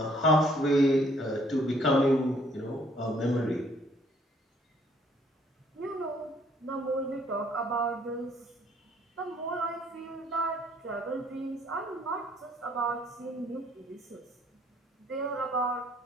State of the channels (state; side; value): normal; both; correlation 0.63